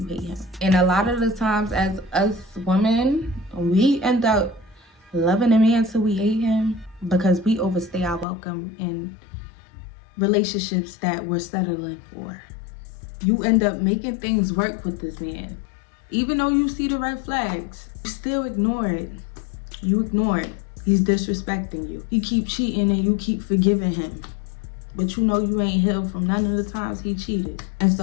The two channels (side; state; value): right; drops out; at 8.2 s